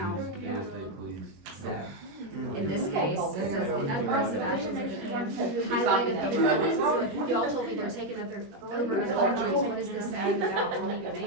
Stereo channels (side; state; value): left; late; 21 ms